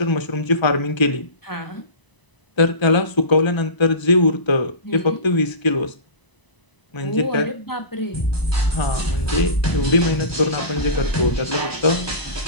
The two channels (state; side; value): late; right; 1.0 ms